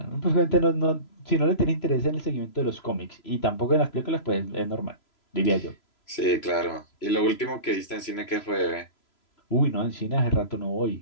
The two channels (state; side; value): late; right; 3.0 ms